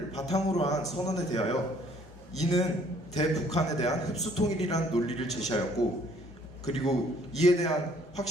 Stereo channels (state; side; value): normal; both; correlation 0.60